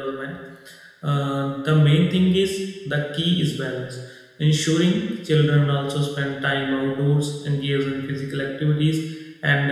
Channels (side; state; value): both; identical; correlation 1.00